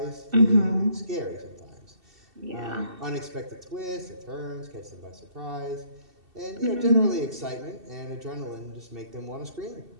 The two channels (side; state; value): left; late; 2.7 ms